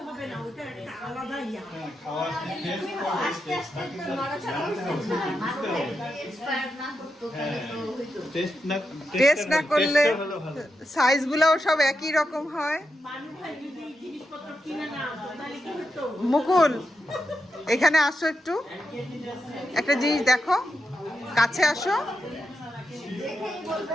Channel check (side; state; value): both; normal; correlation 0.86